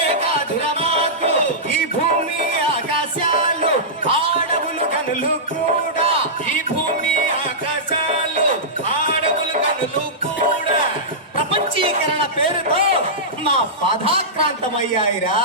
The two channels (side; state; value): both; normal; correlation -0.15